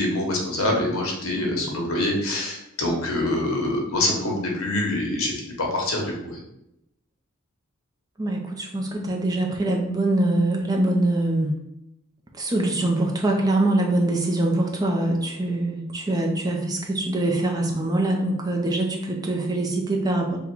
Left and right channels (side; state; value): both; normal; correlation 0.63